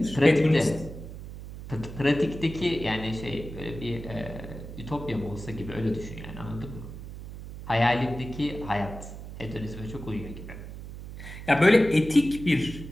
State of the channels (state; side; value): noise; right; hum, 11 dB below the sound